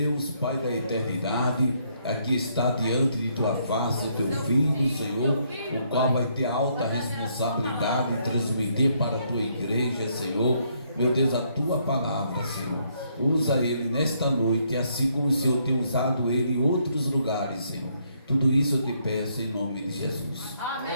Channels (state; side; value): inverted; both; correlation -0.72